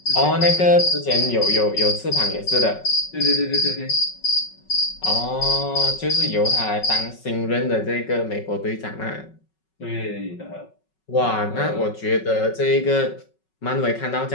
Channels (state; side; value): late; right; 5.4 ms